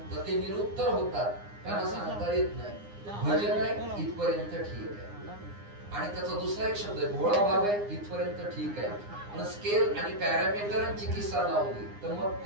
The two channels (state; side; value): late; left; 9.7 ms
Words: तर ते निरुत्तर होतात. त्यांना सांगता येत नाही. भजन आहे इथपर्यंत ठीक आहे, आणि त्याचा दुसरा एक शब्द आहे भोळा भाव आहे, इथपर्यंत ठीक आहे. पण स्केल आणि पॅरामीटरांची किस्सा लावली तर मग